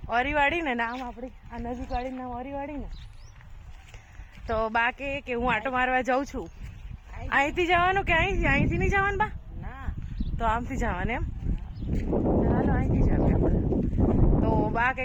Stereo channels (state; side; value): identical; both; correlation 1.00